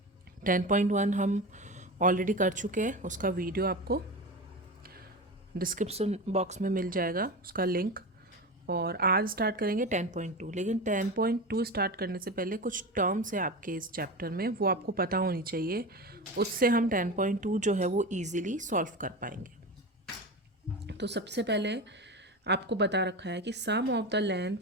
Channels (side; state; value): both; normal; correlation 0.25